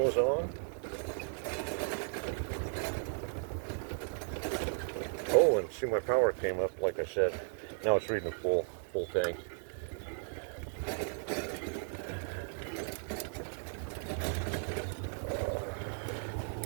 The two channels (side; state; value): left; silent; 54 dB below the other